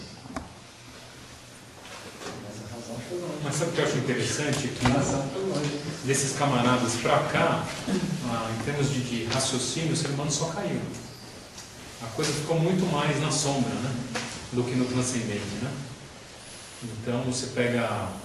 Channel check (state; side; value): identical; both; correlation 1.00